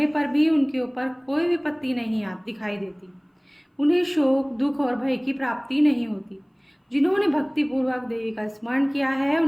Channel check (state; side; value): identical; both; correlation 1.00